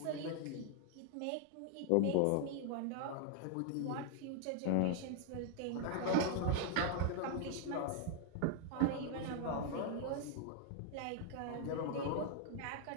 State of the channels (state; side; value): different; both; correlation 0.00